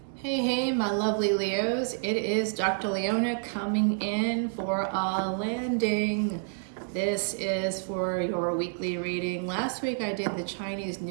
Hey, hey, my lovely Leos. It is Dr. Leona coming in for a landing. This is for your weekly reading. Last week I did the Chinese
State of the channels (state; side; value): silent; left; 59 dB below the other